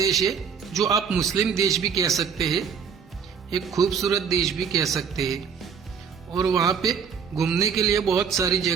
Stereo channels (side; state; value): left; quieter; 6.7 dB